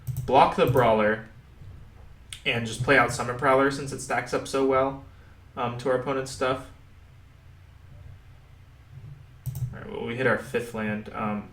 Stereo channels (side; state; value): both; identical; correlation 1.00